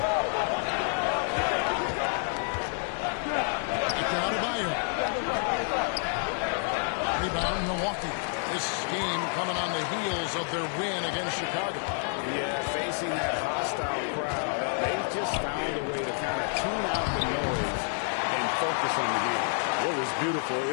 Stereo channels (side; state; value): right; silent; 55 dB below the other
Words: Back to Adebayo. Rebound, Milwaukee. This game coming on the heels of their win against Chicago. Yeah, facing that hostile crowd, they just found a way to kind of tune out the noise and focus on the game. What was beautiful,